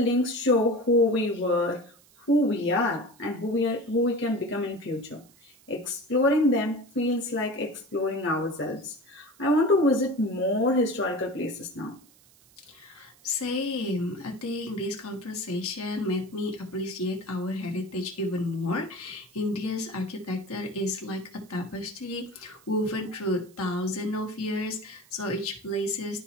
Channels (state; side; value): noise; right; hiss, 28 dB below the sound